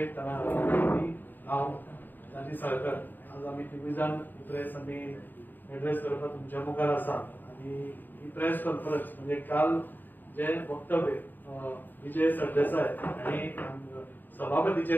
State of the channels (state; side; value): late; right; 0.090 ms